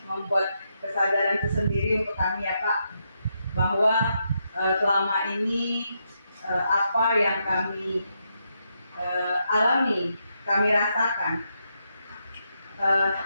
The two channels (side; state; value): both; inverted; correlation -0.81